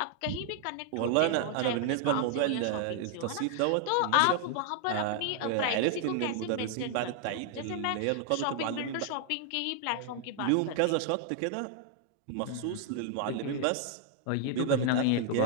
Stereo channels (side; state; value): both; different; correlation 0.00